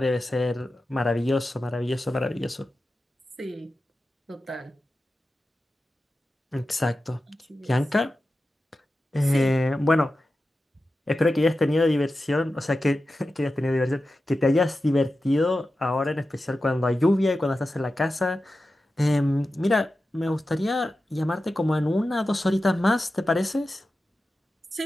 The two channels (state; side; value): normal; both; correlation 0.93